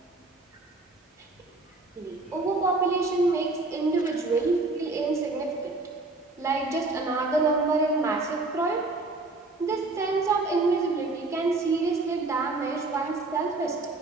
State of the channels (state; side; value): quieter; left; 3.3 dB